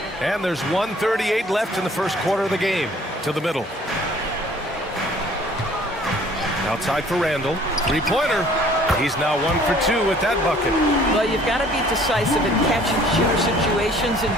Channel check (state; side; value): normal; both; correlation 0.55